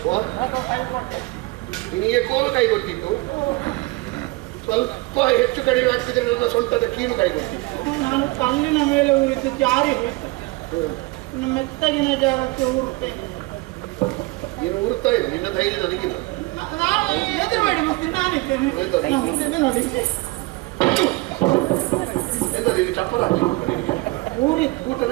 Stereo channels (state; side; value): quieter; left; 23.4 dB